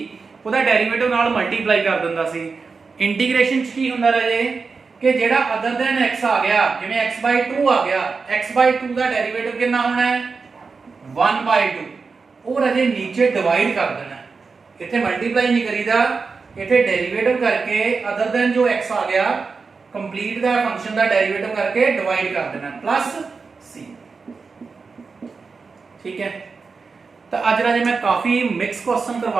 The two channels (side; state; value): left; quieter; 4.7 dB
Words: ਉਹਦਾ ਡੈਰੀਵੇਟਿਵ ਨਾਲ ਮਲਟੀਪਲਾਈ ਕਰ ਦਿੰਦਾ ਸੀ। ਇੰਟੀਗ੍ਰੇਸ਼ਨ ਚ ਕੀ ਹੁੰਦਾ ਰਾਜੇ ਕਿ ਜਿਹੜਾ ਅਦਰ ਦੈਨ x ਆ ਗਿਆ, ਜਿਵੇਂ x by 2 ਆ ਗਿਆ, x by 2 ਦਾ ਡੈਰੀਵੇਟਿਵ ਕਿੰਨਾ ਹੋਣਾ ਹੈ 1 by 2, ਉਹ ਰਾਜੇ ਨੀਚੇ ਡਿਵਾਈਡ ਕਰ ਦੇਣਾ। ਇੱਥੇ ਮਲਟੀਪਲਾਈ ਨਹੀਂ ਕਰੀਦਾ, ਇੱਥੇ ਡੈਰੀਵੇਟਿਵ ਕਰਕੇ ਅਦਰ ਦੈਨ ਜੋ x ਆ ਗਿਆ ਕੰਪਲੀਟ ਦਾ ਫੰਕਸ਼ਨ ਦਾ ਡੈਰੀਵੇਟਿਵ ਕਰਕੇ ਡਿਵਾਈਡ ਕਰ ਦੇਣਾ ਪਲੱਸ c, ਠੀਕ ਹੈ। ਤਾਂ ਅੱਜ ਰਾਜੇ ਮੈਂ ਕਾਫੀ ਮਿਕਸ ਕੁਐਸਚਨ